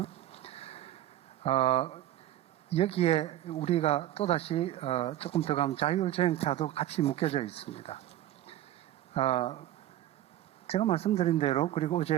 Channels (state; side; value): quieter; left; 13.3 dB